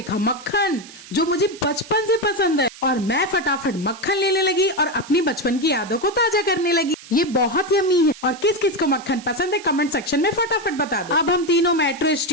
मक्खन, जो मुझे बचपन से पसंद है। और मैं फटाफट मक्खन लेने लगी और अपनी बचपन की यादों को ताजा करने लगी। ये बहुत यम्मी है और किस किस को मक्खन पसंद है कमेंट सेक्शन में फटाफट बता दो। अब हम तीनों मेट्रो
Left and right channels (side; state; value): right; noise; hiss, 18 dB below the sound